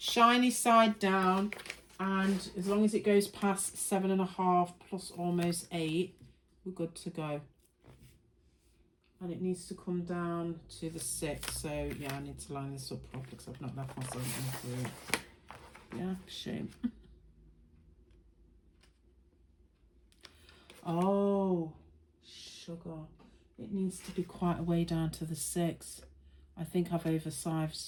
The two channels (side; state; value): both; identical; correlation 1.00